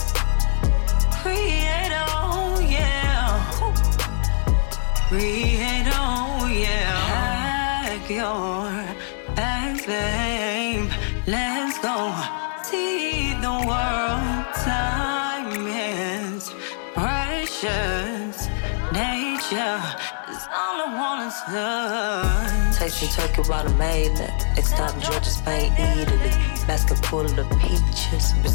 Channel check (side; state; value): right; silent; digital silence